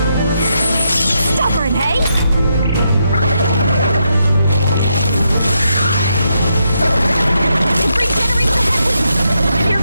Stubborn, hey? It regenerates the headwind! Here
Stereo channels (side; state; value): both; inverted; correlation -0.81